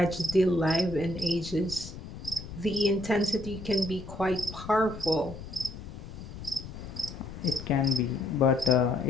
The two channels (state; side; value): noise; left; rumble, 12 dB below the sound